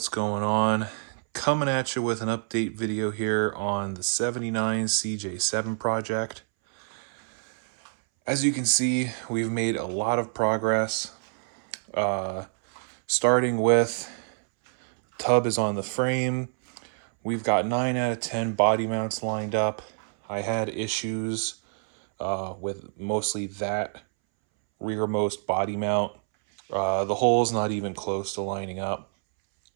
going on? Coming at you with an update video here on the 79 CJ7 project. As you can see, we've made a lot of progress. Starting with tub is on the frame. We've got 9 out of 10 body mounts lined up. I had issues with mostly that rearmost body mount. The hole's not even close to lining up.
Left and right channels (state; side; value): silent; left; 60 dB below the other